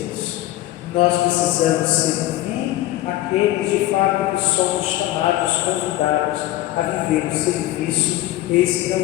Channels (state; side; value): quieter; right; 15.8 dB